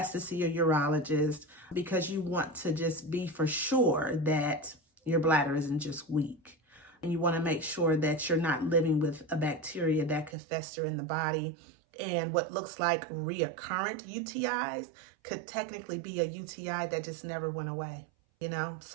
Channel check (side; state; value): left; drops out; at 10.4 s